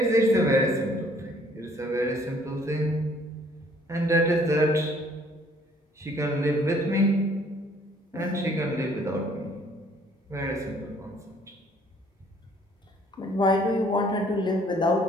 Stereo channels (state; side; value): normal; both; correlation 0.60